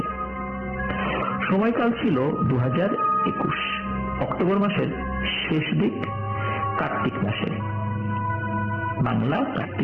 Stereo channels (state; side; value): identical; both; correlation 1.00